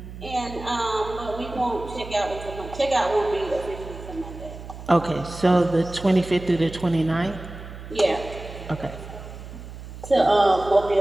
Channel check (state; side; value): noise; right; hum, 13 dB below the sound